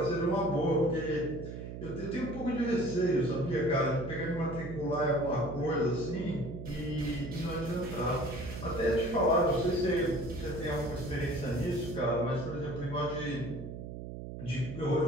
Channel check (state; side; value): noise; right; hum, 9 dB below the sound